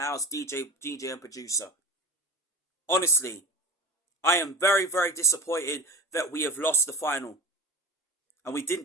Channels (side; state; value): both; normal; correlation 0.32